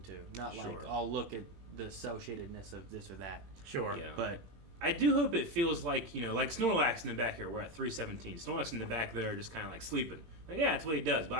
to, not like Sure. I'll look at the cell shadedness of this or that. Sure. Yeah. But I do hope it feels like, you know, like Snorlax in the back here. We're at 317. Snorlax in the back there just kind of like sleeping. Like, yeah, that's what he does. But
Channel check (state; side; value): late; left; 21 ms